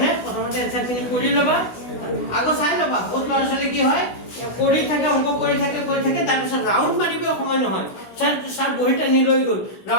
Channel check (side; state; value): right; late; 16 ms